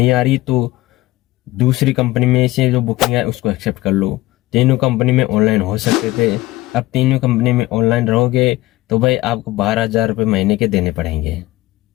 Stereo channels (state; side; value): quieter; right; 17.9 dB